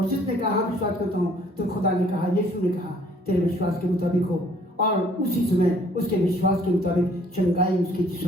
जिसने कहा विश्वास करता हूं, तो खुदा ने कहा, यीशु ने कहा, तेरे विश्वास के मुताबिक हो। और उसी समय उसके विश्वास के मुताबिक चंगाई उसके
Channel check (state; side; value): normal; both; correlation 0.59